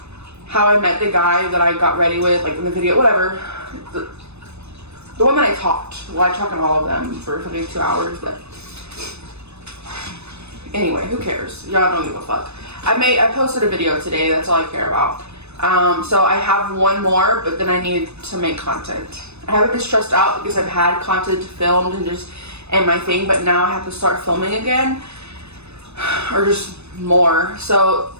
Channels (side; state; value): left; late; 0.80 ms